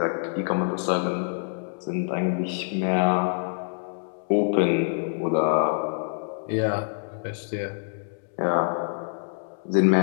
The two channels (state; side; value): silent; right; digital silence